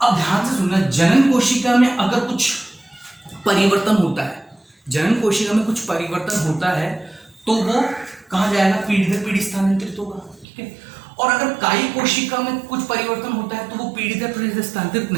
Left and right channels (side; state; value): left; drops out; at 10.5 s